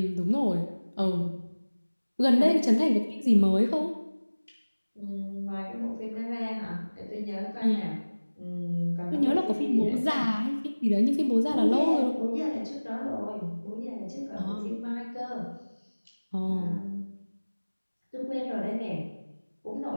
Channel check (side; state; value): both; inverted; correlation -1.00